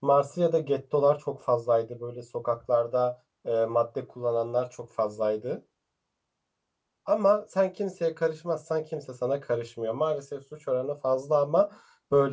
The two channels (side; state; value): both; identical; correlation 1.00